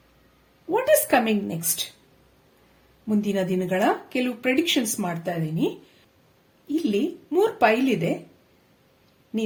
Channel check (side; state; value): both; identical; correlation 1.00